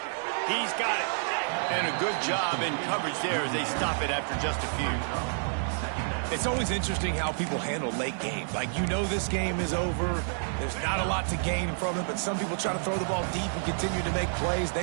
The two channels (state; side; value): silent; left; digital silence